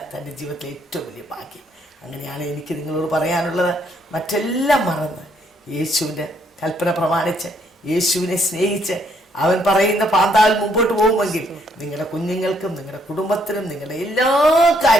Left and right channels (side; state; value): both; normal; correlation 0.70